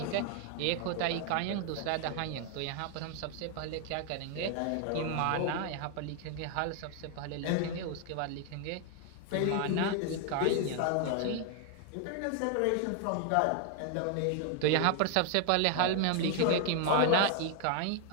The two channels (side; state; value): both; different; correlation 0.00